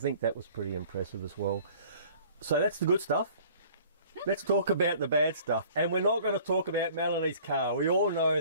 that was pretty impressive as well. So that's the good stuff. let's talk about the bad stuff. And we're not going to talk about Melanie's car. We all know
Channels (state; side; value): inverted; both; correlation -0.51